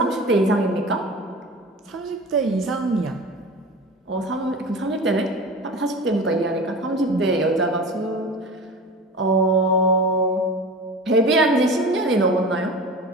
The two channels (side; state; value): both; normal; correlation 0.34